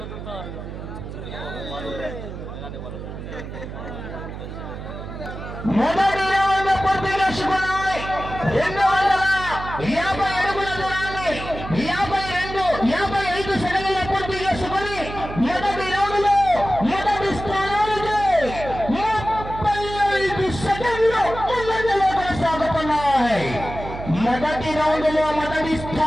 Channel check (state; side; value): noise; right; hum, 9 dB below the sound